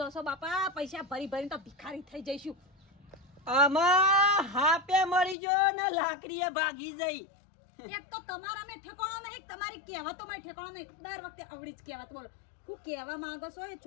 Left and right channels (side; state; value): right; drops out; at 5.4 s